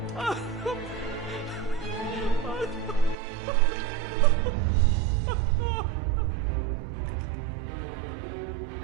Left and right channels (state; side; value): drops out; left; at 3.2 s